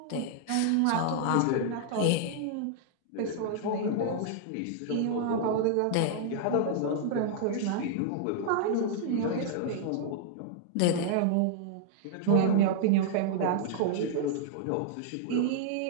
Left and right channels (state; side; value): different; both; correlation -0.01